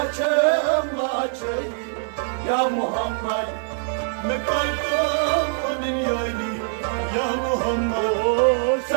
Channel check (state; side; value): silent; left; digital silence